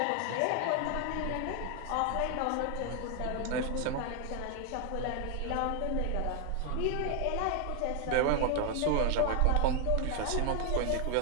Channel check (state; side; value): different; both; correlation 0.00